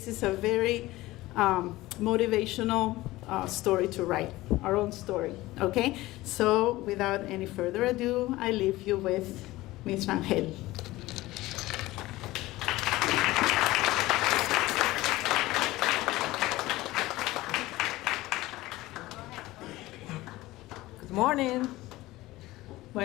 is a very motivational story to write, our own story, okay? So without any further ado, I leave you with Ms. Rangel. Good morning.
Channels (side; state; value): right; quieter; 18.3 dB